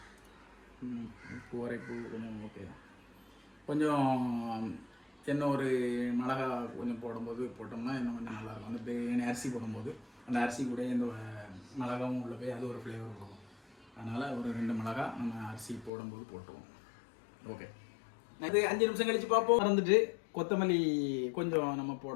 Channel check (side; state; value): right; drops out; at 15.9 s